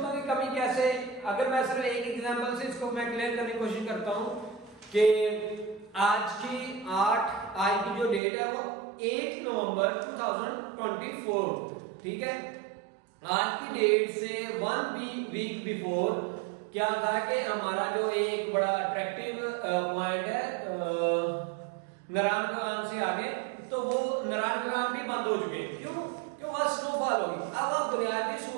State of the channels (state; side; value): drops out; left; at 8.2 s